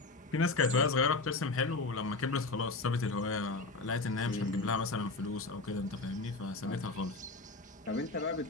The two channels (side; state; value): right; quieter; 3.5 dB